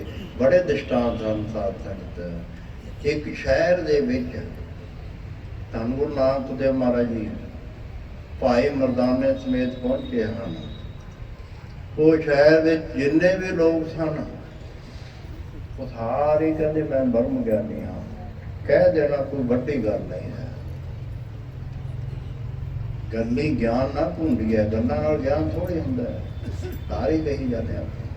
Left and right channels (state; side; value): identical; both; correlation 1.00